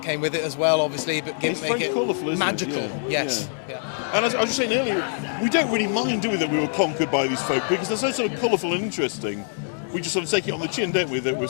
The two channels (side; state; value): right; silent; digital silence